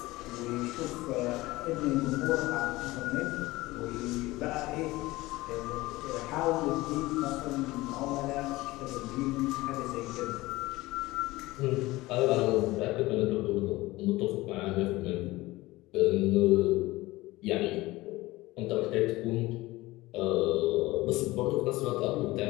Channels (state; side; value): quieter; right; 19.4 dB